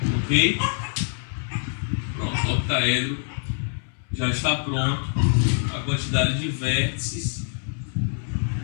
Ok? Pronto, o octaedro já está pronto. A quantidade de vértices,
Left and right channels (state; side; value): silent; right; 62 dB below the other